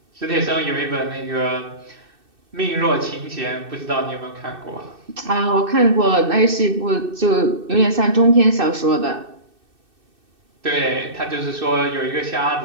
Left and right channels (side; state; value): left; late; 2.6 ms